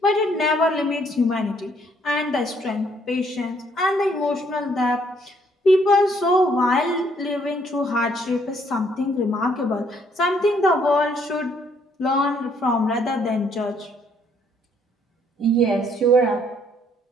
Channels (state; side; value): normal; both; correlation 0.67